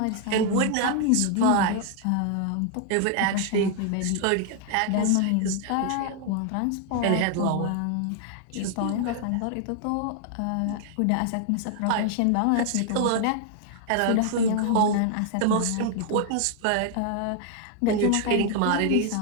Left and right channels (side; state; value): both; different; correlation 0.00